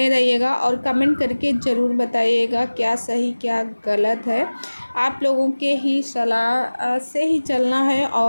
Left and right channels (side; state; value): both; inverted; correlation -1.00